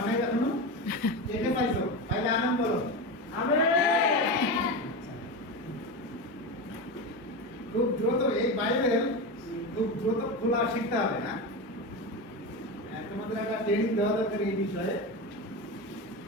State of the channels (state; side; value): normal; both; correlation 0.20